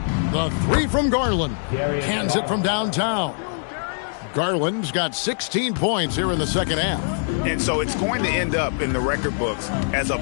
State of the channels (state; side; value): silent; right; digital silence